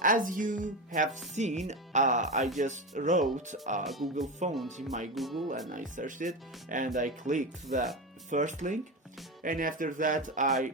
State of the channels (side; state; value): both; normal; correlation 0.19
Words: as you have seen, I just wrote Google Font in my Google and I searched it and I clicked the first link, and after that